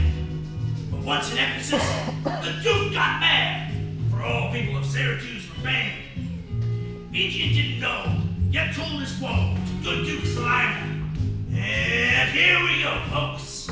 But once in Ephesus, the duke got mad, for all people of Syracuse were banned. Indian didn't know, yet told his woe to good Duke Slater. And here we go, folks.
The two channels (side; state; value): both; identical; correlation 1.00